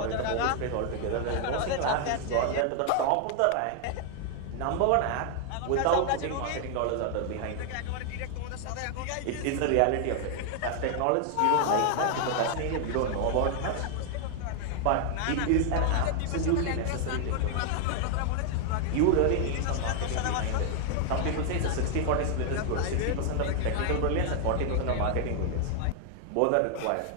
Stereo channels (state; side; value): different; both; correlation 0.00